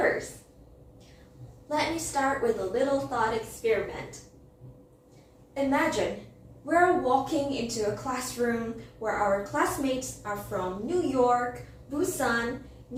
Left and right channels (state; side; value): identical; both; correlation 1.00